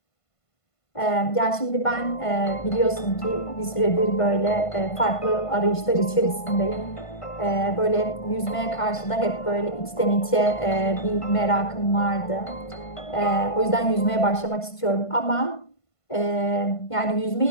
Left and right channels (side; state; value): right; late; 1.5 ms